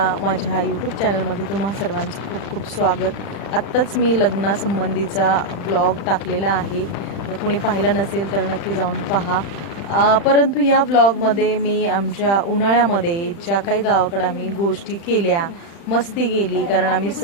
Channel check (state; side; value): late; right; 35 ms